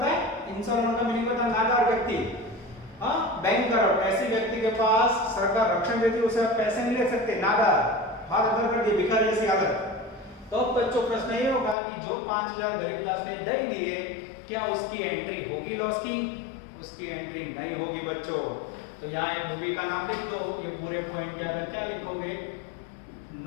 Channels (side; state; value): right; drops out; at 11.8 s